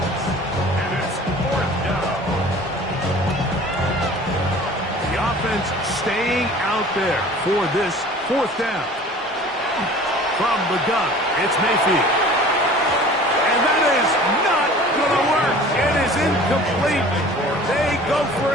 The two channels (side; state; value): both; normal; correlation 0.45